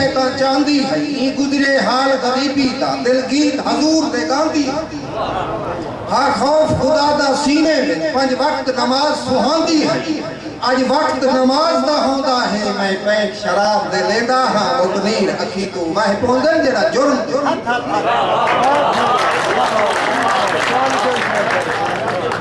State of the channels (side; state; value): both; identical; correlation 1.00